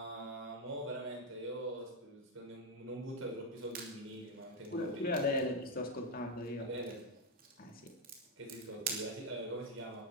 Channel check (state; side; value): normal; both; correlation 0.03